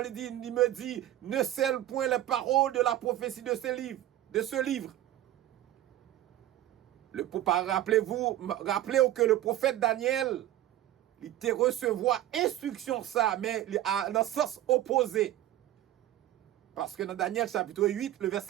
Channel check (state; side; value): quieter; left; 13.4 dB